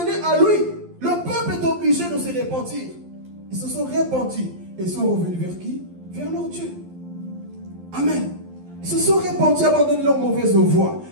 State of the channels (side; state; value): left; late; 11 ms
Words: à lui. Le peuple est obligé de se repentir. Ils se sont repentis et sont revenus vers qui? Vers leur Dieu. Amen. Ils se sont repentis, abandonnés leur mauvaise voie.